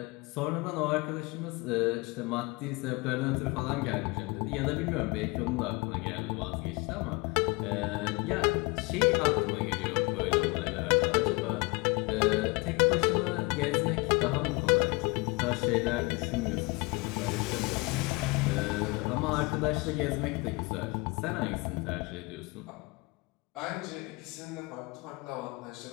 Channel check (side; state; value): right; quieter; 26.1 dB